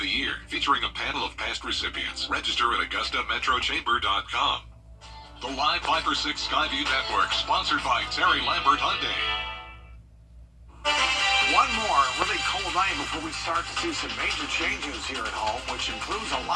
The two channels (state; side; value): identical; both; correlation 1.00